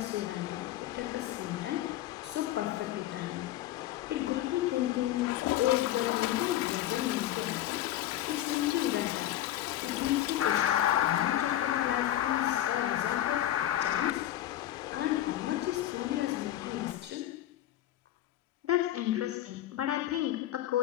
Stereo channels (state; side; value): quieter; right; 13.3 dB